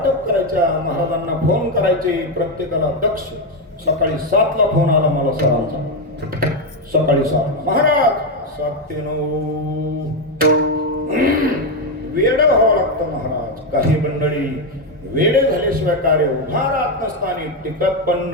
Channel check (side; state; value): both; normal; correlation 0.07